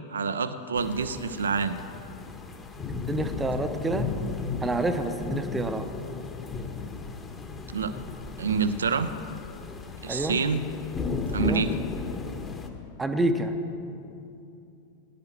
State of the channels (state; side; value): normal; both; correlation 0.03